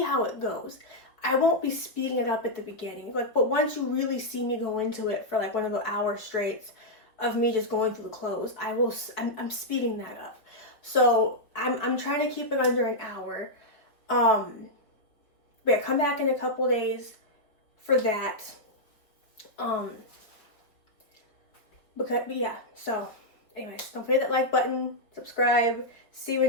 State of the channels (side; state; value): right; late; 4.6 ms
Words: how it goes. I won't be speeding it up at the beginning, but once you really see me go into it for like one of the hour straights of me just going through the clothes, I'm speeding that up. So I'm trying to keep it under an hour. But yeah, come back in a couple days for that. Because yeah, so anyways, don't forget that like button, subscribe. See you